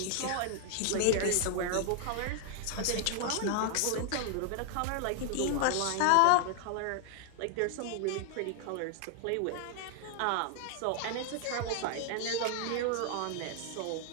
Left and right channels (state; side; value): different; both; correlation 0.00